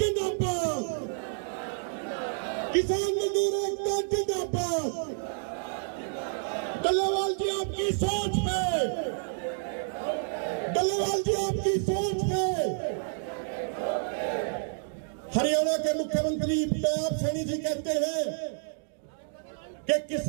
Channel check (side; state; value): left; silent; digital silence